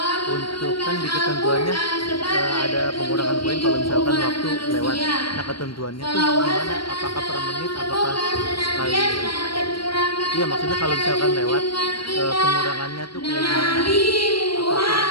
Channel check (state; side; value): late; right; 0.73 ms